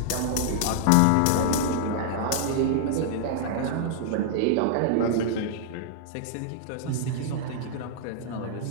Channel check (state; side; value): different; both; correlation -0.01